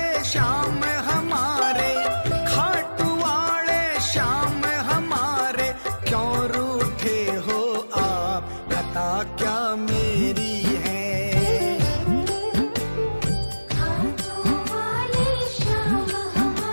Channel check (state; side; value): inverted; both; correlation -1.00